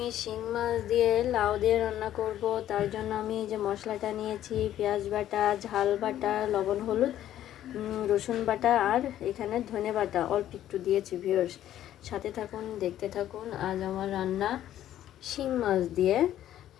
শিং মাছ দিয়ে লাউ দিয়ে রান্না করব। তার জন্য আমি এই যে মশলাটা নিয়েছি, পেঁয়াজ বাটা, ঝাল বাটা, লবণ হলুদ, রসুন বাটা আর এখানে ধনে বাটা অল্প একটু দিয়েছি। ভিউয়ার্স সাথে থাকুন, দেখতে থাকুন। আজ আমার রান্না শিং মাছ দিয়ে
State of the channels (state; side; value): quieter; right; 12.1 dB